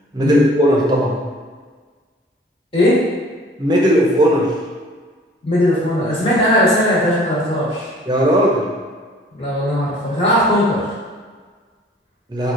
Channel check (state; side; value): normal; both; correlation 0.52